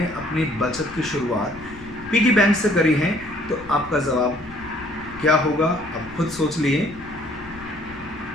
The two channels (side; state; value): left; noise; rumble, 19 dB below the sound